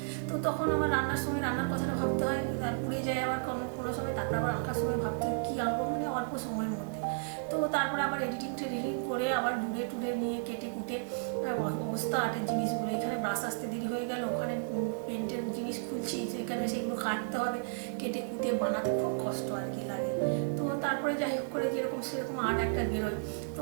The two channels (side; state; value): left; silent; digital silence